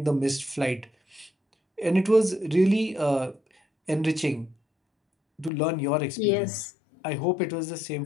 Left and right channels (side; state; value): right; drops out; at 5.5 s